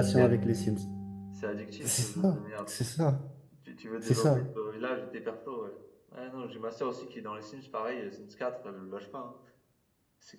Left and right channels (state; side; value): identical; both; correlation 1.00